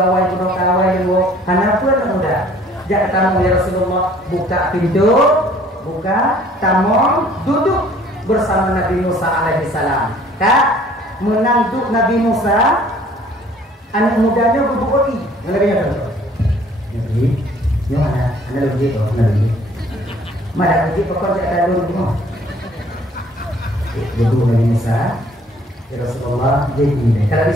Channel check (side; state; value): both; normal; correlation 0.56